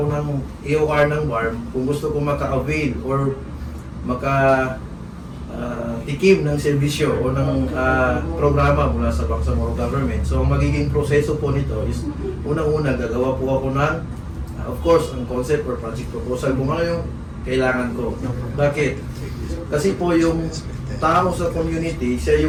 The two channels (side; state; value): both; identical; correlation 1.00